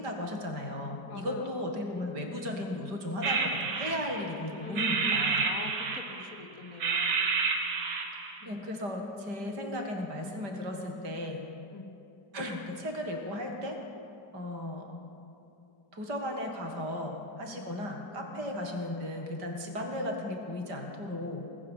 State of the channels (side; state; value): left; late; 5.0 ms